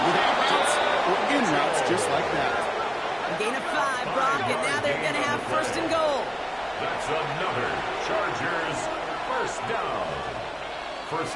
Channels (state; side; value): identical; both; correlation 1.00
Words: with out routes or in routes just like that. A gain of 5, Brock, and now they're going to have 1st and goal. That's another Chargers first down.